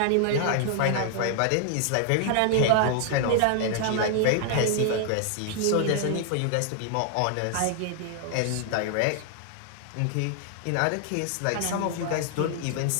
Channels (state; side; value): different; both; correlation 0.00